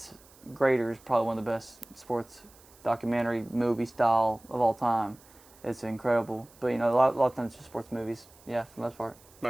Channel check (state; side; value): noise; right; hiss, 26 dB below the sound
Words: Greater is probably one of the best sports documentary movie style of all time. It's incredible. But a lot of times just sports movies. Yeah, for the most part.